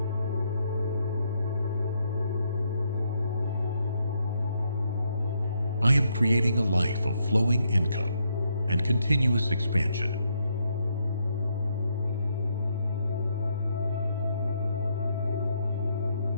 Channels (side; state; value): both; inverted; correlation -0.76